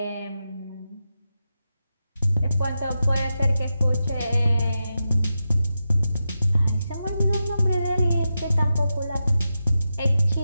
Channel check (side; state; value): both; inverted; correlation -0.90